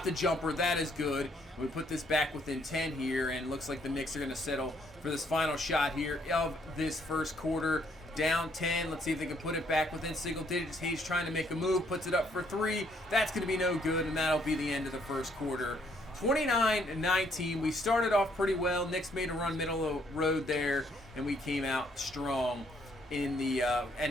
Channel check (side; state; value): both; normal; correlation 0.68